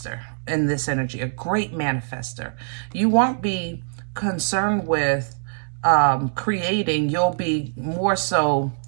in this energy, a great manifester. You won't be concerned with creating. You'll be more so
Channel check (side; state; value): left; silent; digital silence